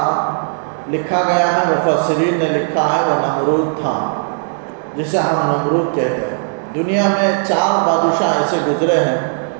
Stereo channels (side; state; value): left; silent; digital silence